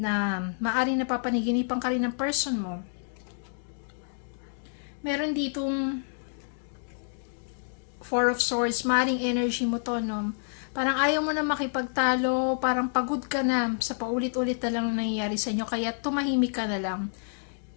maaari napapanaginipan ka rin ng person mo. Meron ditong Four of Swords, maaring energy mo to, no? Parang ayaw mo na makipagtalo, parang pagod ka na sa paulit-ulit na lang na nangyayari sa inyo, kaya tumahimik ka na lang.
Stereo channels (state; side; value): silent; right; digital silence